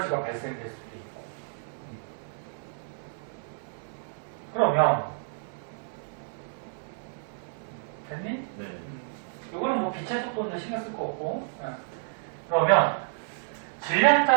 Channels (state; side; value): silent; left; 58 dB below the other